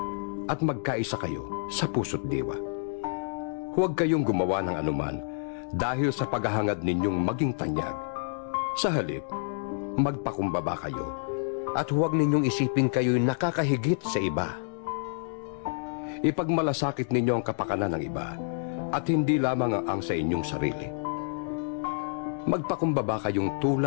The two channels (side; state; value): right; silent; digital silence